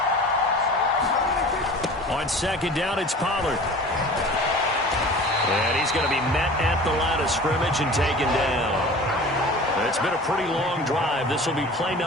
On 2nd down, it's Pollard. And he's going to be met at the line of scrimmage and taken down. It's been a pretty long drive. This will be play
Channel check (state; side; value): normal; both; correlation 0.40